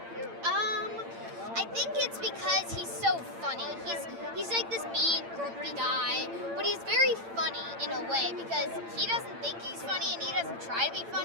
I think it's because he's so funny. He's like this mean, grumpy guy, but he's very funny in a way because he doesn't think he's funny and he doesn't try to be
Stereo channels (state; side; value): late; left; 8.8 ms